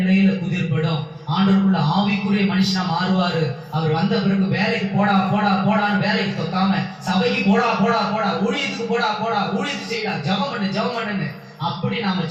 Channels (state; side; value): identical; both; correlation 1.00